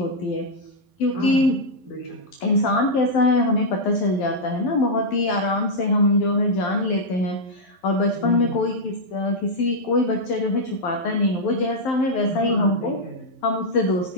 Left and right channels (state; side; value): late; right; 12 ms